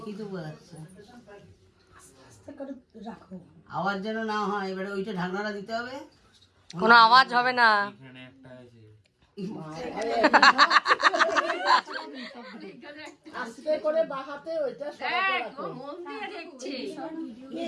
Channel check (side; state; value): both; identical; correlation 1.00